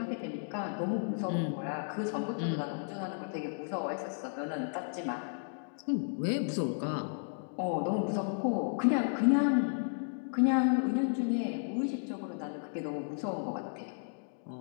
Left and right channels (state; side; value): silent; right; digital silence